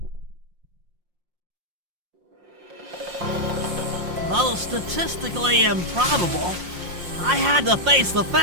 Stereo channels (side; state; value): left; late; 5.6 ms